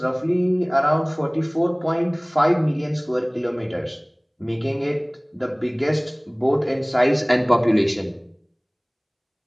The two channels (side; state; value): both; identical; correlation 1.00